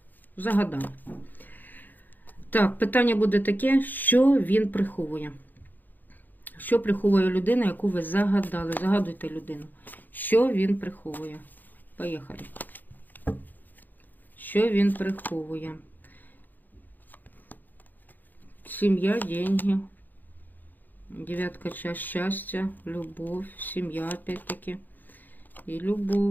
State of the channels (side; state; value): right; late; 0.086 ms